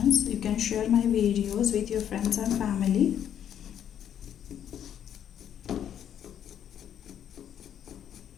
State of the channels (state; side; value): quieter; right; 9.6 dB